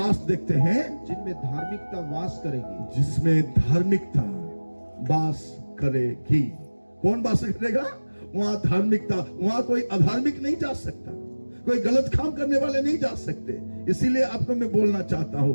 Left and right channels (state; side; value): inverted; both; correlation -1.00